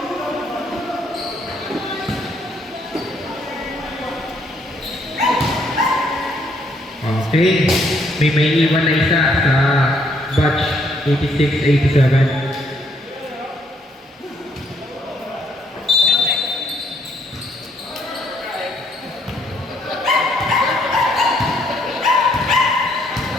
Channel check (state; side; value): normal; both; correlation 0.69